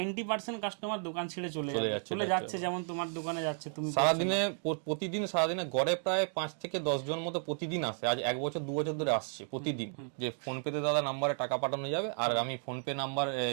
কাস্টমার দোকান ছেড়ে চলে যাচ্ছে। যেমন তোমার দোকানে যাচ্ছে, তুমি সারাদিনে প্রতিদিন সারাদিনে গড়ে প্রায় 5 থেকে 10 জন মতো প্রতিদিন আসে। আজ 1 বছর 2 বছর ধরে আসছে প্রতিদিন, যে ফোনপেতে দাদা নাম্বারে টাকা পাঠানো যাবে, আর আমি ফোনপে নাম্বার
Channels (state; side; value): silent; left; 56 dB below the other